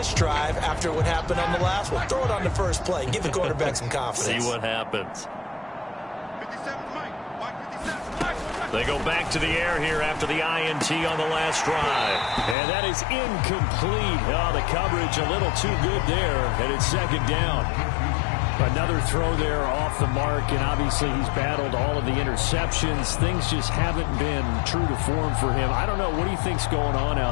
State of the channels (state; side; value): drops out; right; at 12.6 s